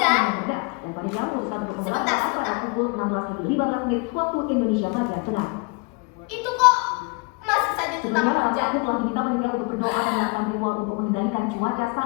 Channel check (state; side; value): quieter; right; 30.3 dB